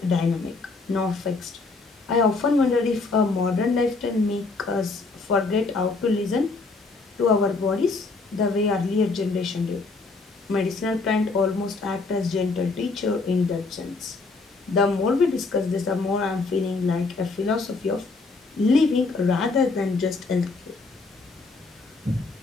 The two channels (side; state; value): right; quieter; 3.8 dB